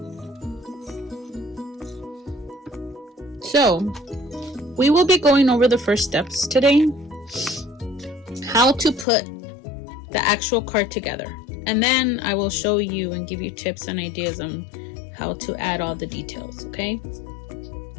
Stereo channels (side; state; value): right; drops out; at 9.1 s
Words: So, we will be going over the first steps today, how to put the actual card together. And then I will show you and give you tips and ideas on how to add all the details, okay?